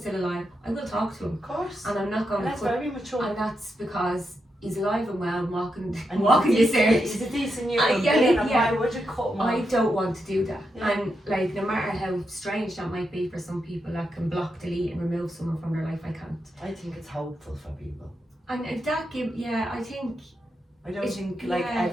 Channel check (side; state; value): both; normal; correlation 0.85